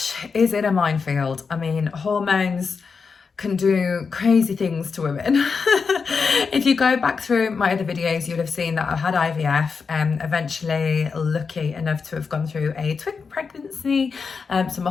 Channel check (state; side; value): quieter; right; 5.3 dB